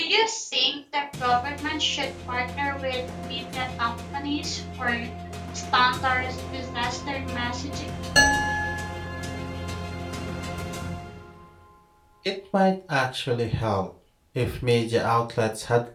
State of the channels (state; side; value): identical; both; correlation 1.00